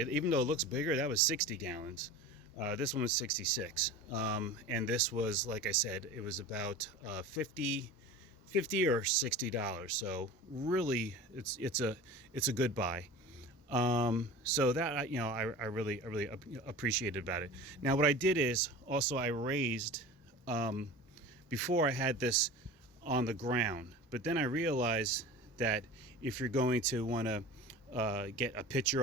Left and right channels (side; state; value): both; normal; correlation 0.35